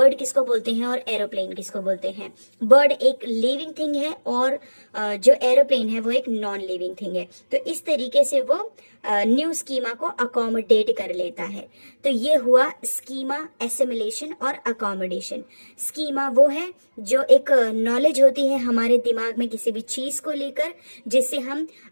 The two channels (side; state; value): both; inverted; correlation -1.00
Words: किसको बोलते हैं और एरोप्लेन किसको बोलते हैं। बर्ड एक लिविंग थिंग है और जो एरोप्लेन है वो एक नॉन लिविंग थिंग है। तो इस तरीके से वो न्यू स्कीमा को अकोमोडेट कर लेता है। तो ये हुआ स्कीमा, एसिमिलेशन और अकोमोडेशन। स्कीमा वो है जो एक नॉलेज होती है हमारे दिमाग में किसी भी चीज को लेकर, जिससे हम